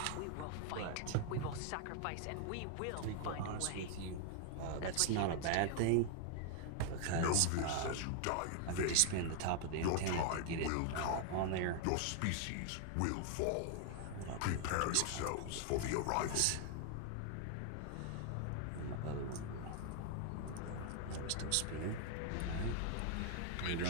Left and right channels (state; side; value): different; both; correlation 0.00